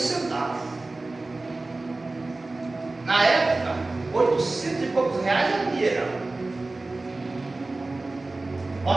Na época, 800 e poucos reais era dinheiro.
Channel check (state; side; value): quieter; left; 3.2 dB